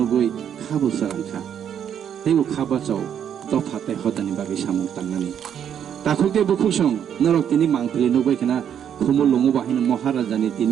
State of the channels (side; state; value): left; quieter; 9.0 dB